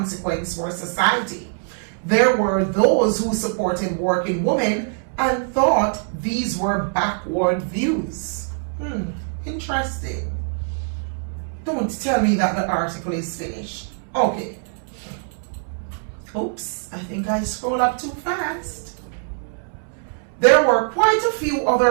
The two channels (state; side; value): silent; left; 64 dB below the other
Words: for society. There were those who supported working women and thought these were backward views. Interesting. Don't tell me that the article is finished. Okay. Oops, I think I scrolled up too fast. There were quite a few